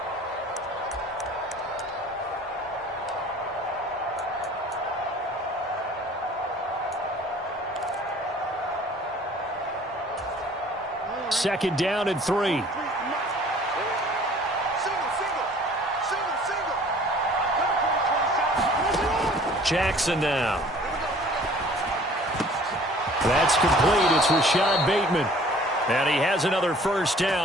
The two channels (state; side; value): normal; both; correlation 0.51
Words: Second down and 3. Jackson now. That's complete. It's Rashad Bateman. And he has another first